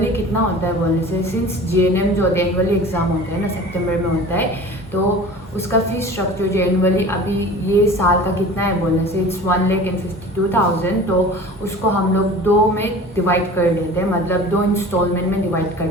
कितना होता है बोलने से, सिंस जीएनएम जो होता है एनुअली एग्ज़ाम होता है ना, सितंबर में होता है, तो उसका फीस स्ट्रक्चर जो एनुअली अभी ये साल का कितना है बोलने से इट्स 1,52,000। तो उसको हम लोग 2 में डिवाइड कर देते हैं, मतलब 2 इंस्टॉलमेंट में डिवाइड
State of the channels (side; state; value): both; normal; correlation 0.40